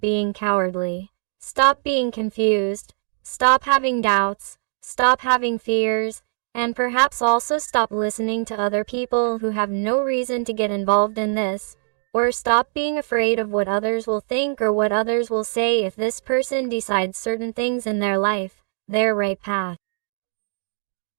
cowardly, stop being confused, stop having doubts, stop having fears, and perhaps also stop listening to other people who have no reason to get involved in this, Or stop being afraid of what others will think or what others will say if this person decides certain things in their life, their right path.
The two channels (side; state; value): left; silent; digital silence